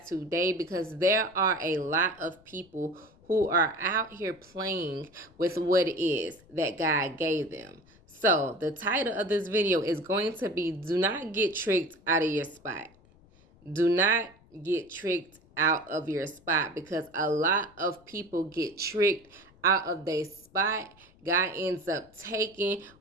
today because there are a lot of people who are out here playing with what it is that God gave them. So the title of this video is going to be Do Not Get Tricked Out of Your Spot. Do not get tricked out of your spot, because a lot of people get tricked out of their spot. God ends up taking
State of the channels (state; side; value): noise; left; rumble, 28 dB below the sound